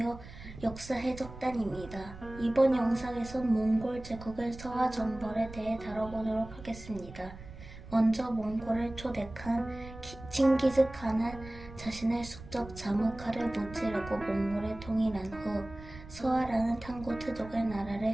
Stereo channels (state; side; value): noise; right; rumble, 15 dB below the sound